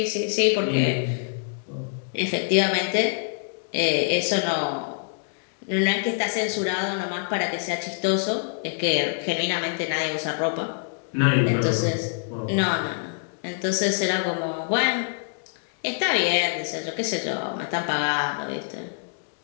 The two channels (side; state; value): right; silent; digital silence